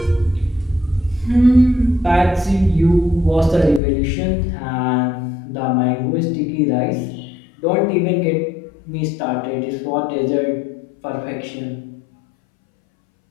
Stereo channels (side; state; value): right; drops out; at 3.8 s